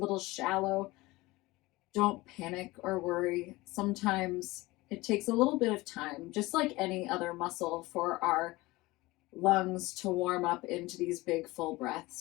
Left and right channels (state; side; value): quieter; right; 20.6 dB